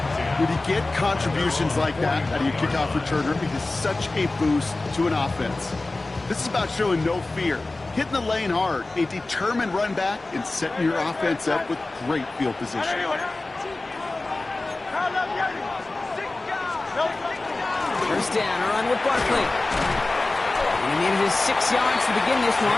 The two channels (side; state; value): right; quieter; 3.1 dB